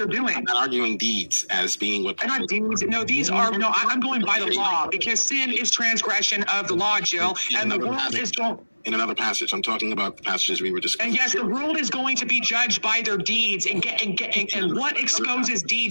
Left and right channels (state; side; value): inverted; both; correlation -1.00